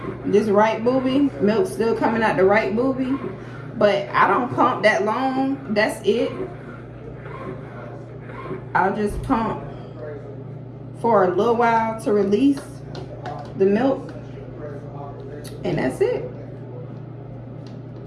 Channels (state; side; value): identical; both; correlation 1.00